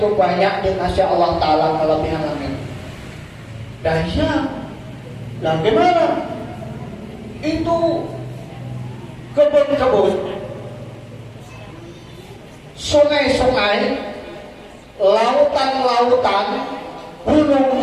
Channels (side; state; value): both; identical; correlation 1.00